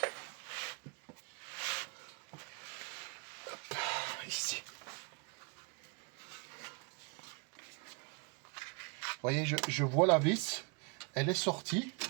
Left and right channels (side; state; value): left; quieter; 32.7 dB